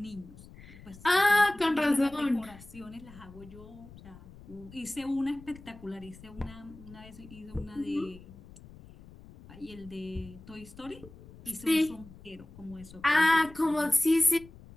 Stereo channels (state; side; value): noise; left; rumble, 19 dB below the sound